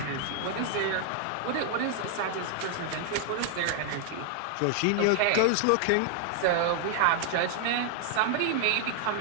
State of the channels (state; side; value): different; both; correlation 0.00